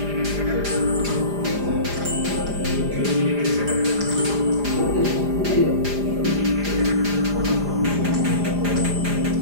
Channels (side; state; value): left; late; 4.9 ms